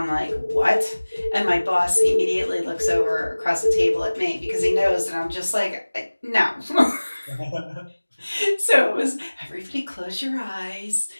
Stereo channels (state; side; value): inverted; both; correlation -1.00